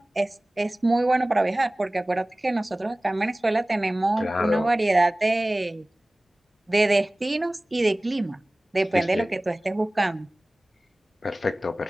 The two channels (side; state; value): both; normal; correlation 0.98